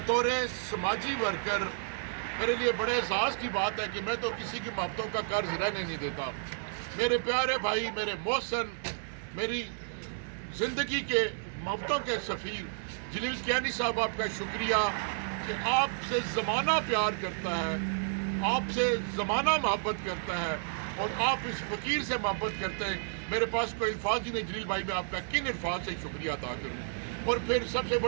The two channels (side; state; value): left; silent; digital silence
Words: سماجی ورکر میرے لیے بڑے اعزاز کی بات ہے کہ میں تو کسی کی محبتوں کا قرض رہنے نہیں دیتا۔ میرے پیارے بھائی، میرے محسن، میری زندگی کے محبتوں کے سفیر جلیل کیانی صاحب، آپ کا شکریہ کہ آپ سے زمانہ پیار کرتا ہے، آپ سے زمانہ محبت کرتا ہے اور آپ اس فقیر سے محبت کرتے ہیں۔ میرے پاس کوئی الفاظ ہی نہیں جلیل بھائی، میں آپ کا کن الفاظ سے شکریہ ادا کروں۔ اور پھر سب سے